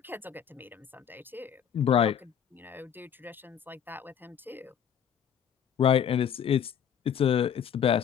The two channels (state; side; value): quieter; right; 8.4 dB